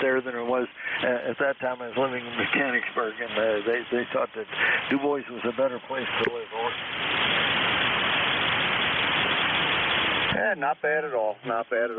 there than it was at that time. I was living in Mechanicsburg, and they thought that Du Bois was a better place to live. Yeah, not bad at all. Not bad at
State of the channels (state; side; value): identical; both; correlation 1.00